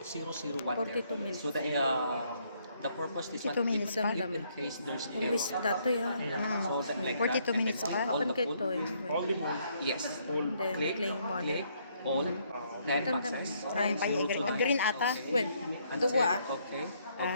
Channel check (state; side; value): inverted; both; correlation -0.70